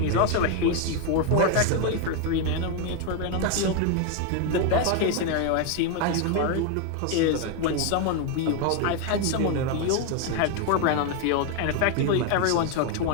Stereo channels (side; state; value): both; different; correlation 0.01